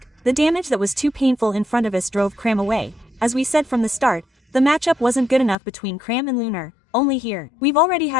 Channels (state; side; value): drops out; right; at 5.6 s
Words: The damage that was too painful in front of us drove Cram away. As we said from the start, the matchup wasn't good enough between Cram and Lunar. Only here. We've already